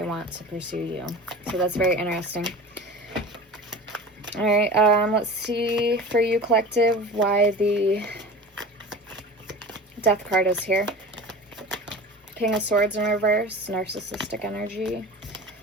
want to pursue you. So that's very interesting. All right, let's see for you, collective, why the Death card is here. King of Swords in reverse, narcissistic energy.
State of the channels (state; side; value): normal; both; correlation 0.35